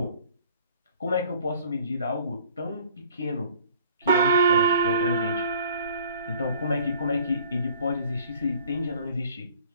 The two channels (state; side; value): inverted; both; correlation -0.54